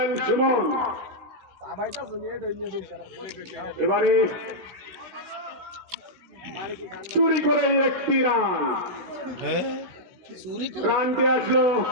সুমন এবারে চুরি করে একটি রানটি আসলো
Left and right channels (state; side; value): late; left; 16 ms